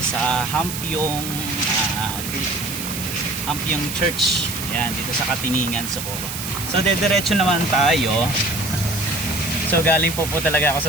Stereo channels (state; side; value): noise; right; hiss, 6 dB below the sound